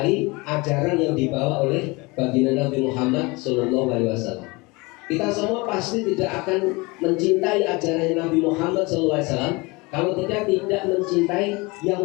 ajaran yang dibawa oleh baginda Nabi Muhammad SAW. Kita semua pasti tidak akan mencintai ajaran Nabi Muhammad SAW kalau kita tidak mencintai yang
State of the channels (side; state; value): right; quieter; 25.2 dB